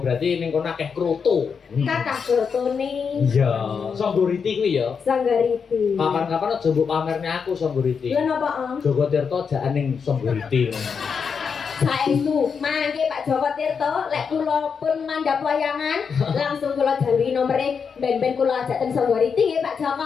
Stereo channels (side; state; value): right; quieter; 6.1 dB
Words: ning kono akeh krutu. Kakak fotone Iya, Songgoriti kuwi ya. Sanggariti. Kapan-kapan aja mbok pamerne aku Songgoriti. Lha napa, Ang? Joko Tirto jaan ning Songgoriti. Saestu, mangke Pak Joko Tirto, lek kula pun mandhap wayangan, langsung kula jalui nomere ben-ben kula ajak teng Songgoriti nggih Pak